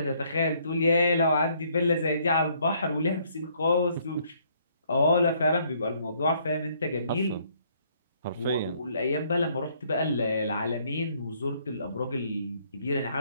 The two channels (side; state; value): both; inverted; correlation -0.66